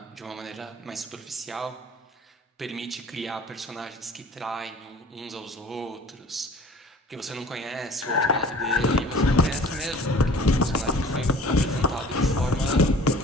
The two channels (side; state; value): both; normal; correlation 0.47